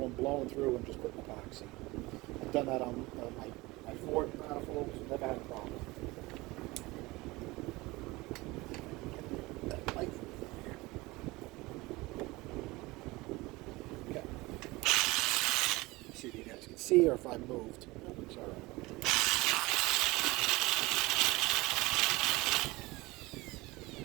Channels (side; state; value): left; quieter; 21.7 dB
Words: blowing through and just putting epoxy. I've done that on my Ford manifolds, never had a problem. See, or if I moved. Sorry.